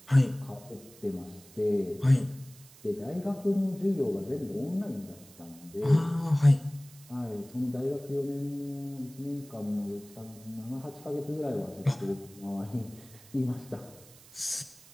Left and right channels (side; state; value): right; noise; hiss, 22 dB below the sound